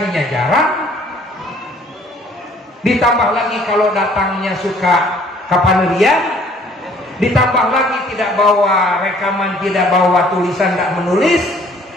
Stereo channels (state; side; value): normal; both; correlation 0.58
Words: jarang. Ditambah lagi kalau datangnya suka kapanerian, ditambah lagi tidak bawa rekaman, tidak bawa tulisan, tidak menulis,